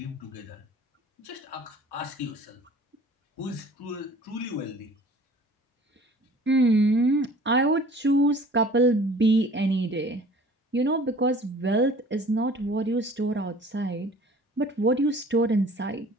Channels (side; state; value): both; normal; correlation 0.49